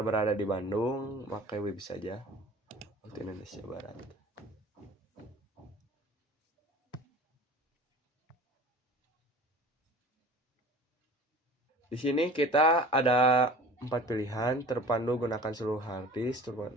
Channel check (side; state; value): both; normal; correlation 0.42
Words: berada di Bandung, pakai web saja. Waktu Indonesia Barat. Di sini kita ada 4 pilihan, terpandu gunakan seluruh harddisk,